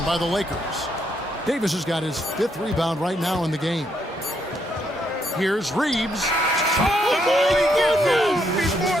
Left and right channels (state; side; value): normal; both; correlation 0.75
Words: by the Lakers. Davis has got his 5th rebound right now in the game. Here's Reeves. Oh, my goodness!